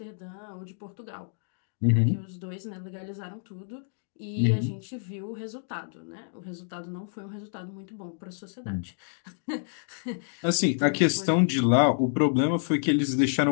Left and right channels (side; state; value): right; silent; digital silence